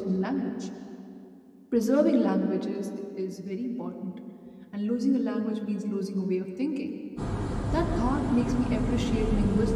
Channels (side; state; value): both; identical; correlation 1.00